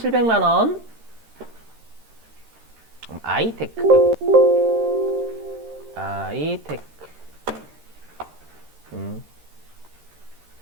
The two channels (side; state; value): left; late; 13 ms